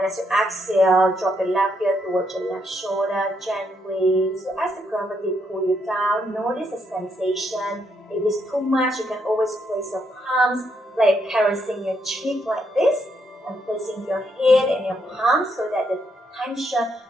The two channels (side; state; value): both; normal; correlation 0.76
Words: as you exhale, drop your left ear towards your left shoulder gently. So as the gravity pulls you down, notice the sensation. If it's too much, you can always place your palms, like caressing your cheek like this, and placing your head and your palms so that the tension